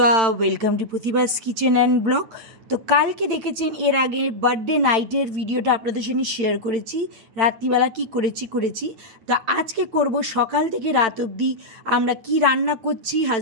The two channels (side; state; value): left; late; 8.8 ms